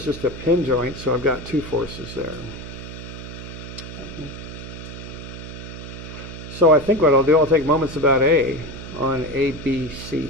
just a pin joint, so I've got 2 forces there. Okay. So I think what I'll do, I'll take moments about A on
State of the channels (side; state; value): right; noise; hum, 11 dB below the sound